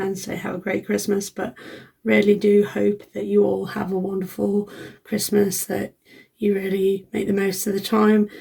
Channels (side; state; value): both; identical; correlation 1.00